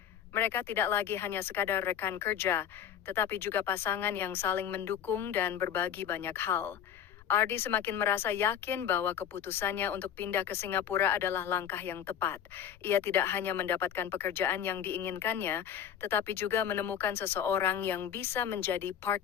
Mereka tidak lagi hanya sekadar rekan kerja, tetapi juga pasangan yang saling mendukung dan berbagi banyak hal. Ardi semakin merasa yakin bahwa keputusannya untuk pindah ke Singapura adalah langkah yang tepat. Ia tidak hanya mendapatkan pekerjaan yang diinginkannya, tetapi juga menemukan seseorang yang bisa menjadi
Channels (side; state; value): right; quieter; 9.2 dB